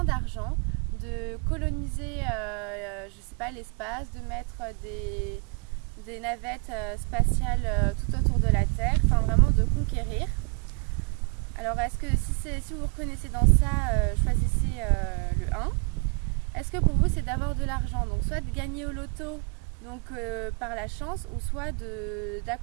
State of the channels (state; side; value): quieter; left; 36.4 dB